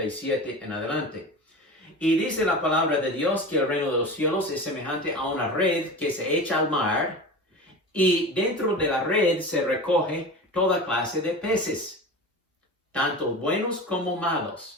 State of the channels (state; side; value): normal; both; correlation 0.31